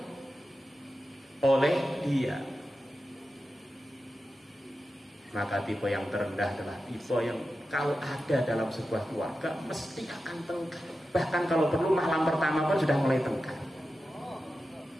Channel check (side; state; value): both; normal; correlation 0.92